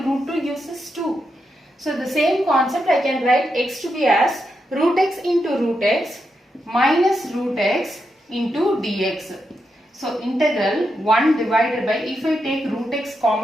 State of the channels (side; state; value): both; normal; correlation 0.85